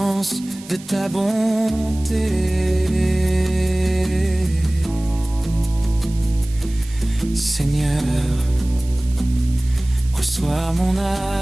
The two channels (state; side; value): noise; right; hiss, 20 dB below the sound